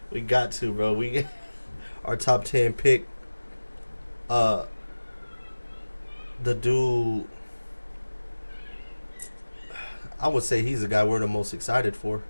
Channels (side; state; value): both; inverted; correlation -1.00